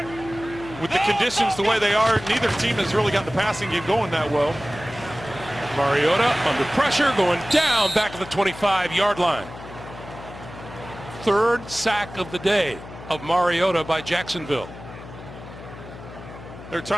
With the conditions the way they are, neither team has really got the passing game going that well. Mariota under pressure, going down back of the 25-yard line. Third sack of the day of Mariota by Jacksonville. They're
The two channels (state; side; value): noise; left; hum, 15 dB below the sound